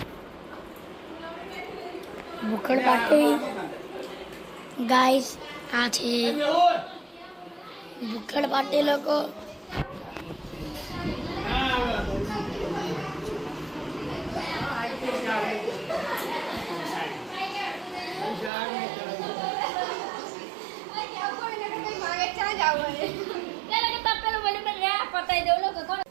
ભૂખડ પાર્ટી ગાઈસ આ છે ભૂકડ પાર્ટી લોકો.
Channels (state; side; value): drops out; left; at 18.5 s